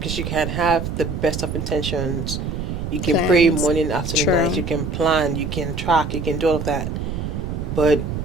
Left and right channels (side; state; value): right; noise; rumble, 4 dB below the sound